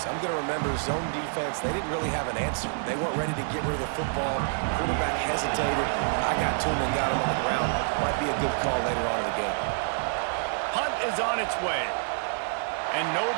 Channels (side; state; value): left; silent; digital silence